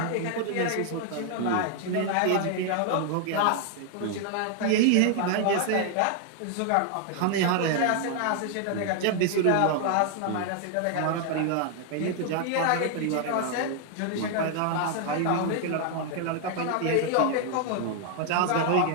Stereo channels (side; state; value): both; different; correlation 0.00